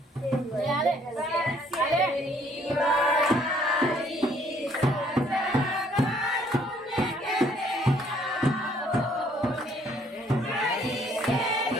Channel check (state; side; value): normal; both; correlation 0.63